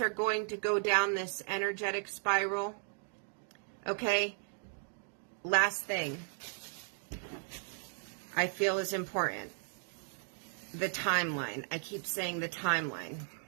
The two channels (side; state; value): left; silent; 54 dB below the other